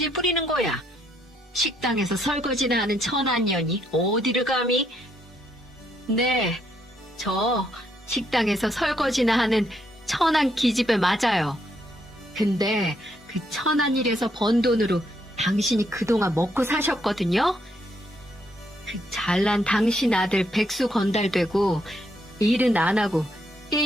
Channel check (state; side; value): normal; both; correlation 0.74